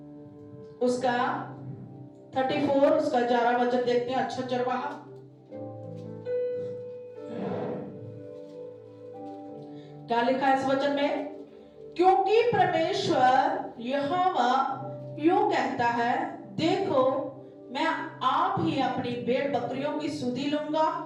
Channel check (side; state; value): both; identical; correlation 1.00